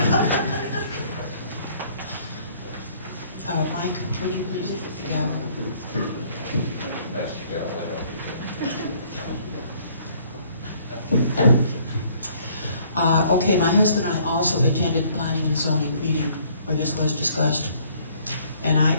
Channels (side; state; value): both; inverted; correlation -0.60